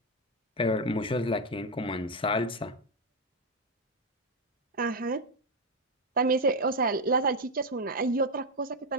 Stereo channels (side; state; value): both; normal; correlation 0.05